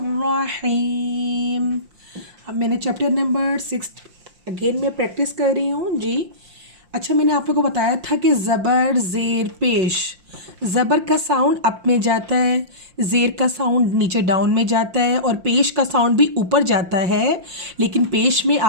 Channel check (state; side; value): late; left; 5.7 ms